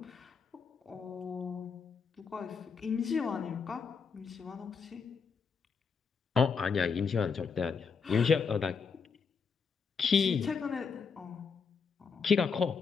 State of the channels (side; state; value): right; quieter; 5.7 dB